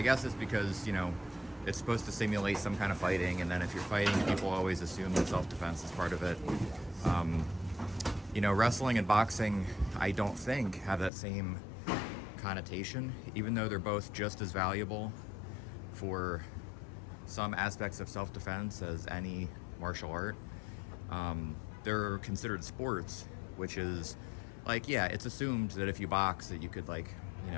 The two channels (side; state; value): right; drops out; at 11.1 s